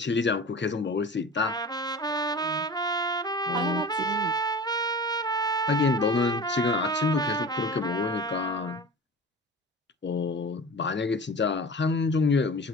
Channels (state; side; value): normal; both; correlation 0.36